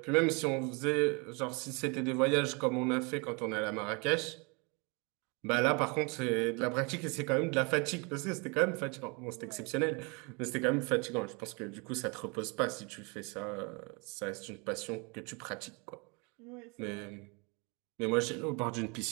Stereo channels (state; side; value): quieter; left; 30.7 dB